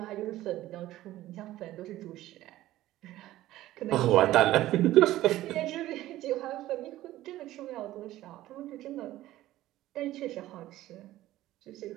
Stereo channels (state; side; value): quieter; left; 15.2 dB